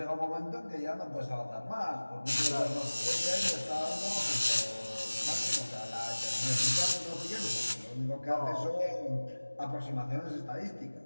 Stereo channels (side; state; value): both; inverted; correlation -1.00